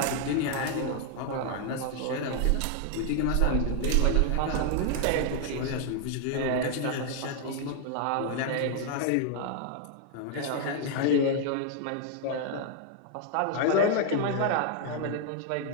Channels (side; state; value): both; different; correlation 0.00